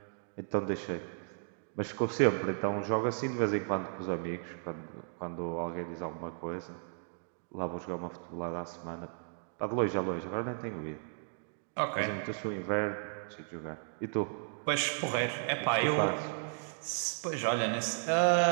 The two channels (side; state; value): left; silent; digital silence